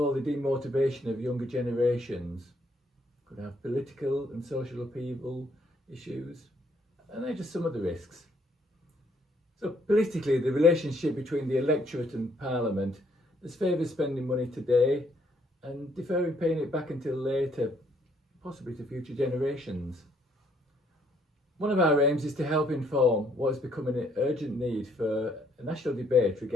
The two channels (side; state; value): both; normal; correlation 0.68